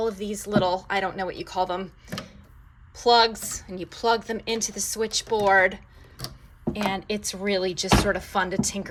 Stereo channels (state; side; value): identical; both; correlation 1.00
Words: of these little, I don't know what you call them, plugs, and you plug them into the switchboard. And it's really just sort of fun to